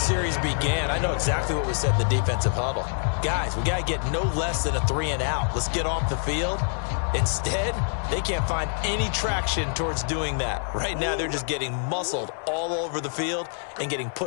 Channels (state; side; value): silent; right; digital silence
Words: began, I know exactly what was said in the defensive huddle. Guys, we got to get no less than a 3-and-out. Let's get off the field. Instead, they can't find any traction towards doing that. Right now, they're just getting muscled all over the field and getting